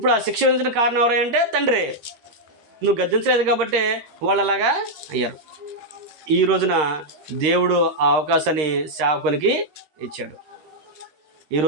ఆ శిక్ష విధించిన కారణం ఎవరంటే తండ్రి. నువ్వు గద్దించలేదు కాబట్టి వాళ్ళు అలాగా అయ్యారు. ఈ రోజున దేవుడు ఆ అవకాశాన్ని సేవకునికి ఇచ్చాడు. ఈ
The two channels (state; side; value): late; left; 13 ms